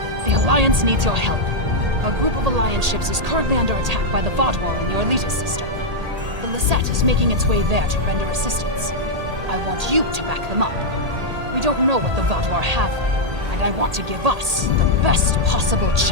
The Alliance needs your help. A group of Alliance ships is currently under attack by the Vaadwaur in the Orletus system. The Lisette is making its way there to render assistance. I want you to back them up. We don't know what the Vaadwaur have there, and I want to give us the best possible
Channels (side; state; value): left; late; 1.8 ms